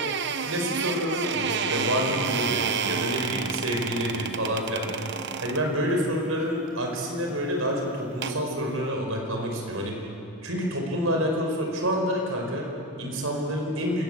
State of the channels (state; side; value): normal; both; correlation 0.13